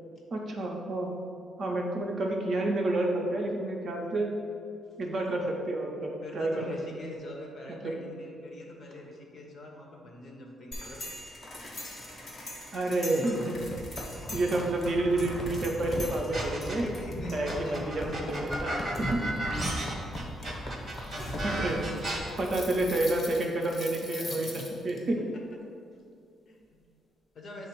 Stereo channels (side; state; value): both; normal; correlation 0.80